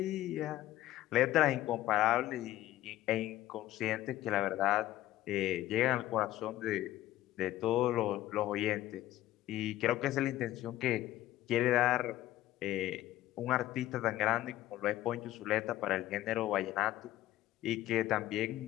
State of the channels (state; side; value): quieter; right; 14.6 dB